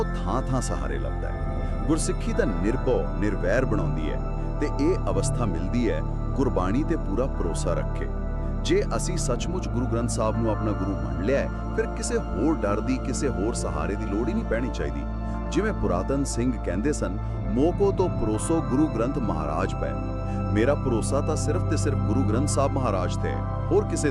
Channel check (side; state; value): both; identical; correlation 1.00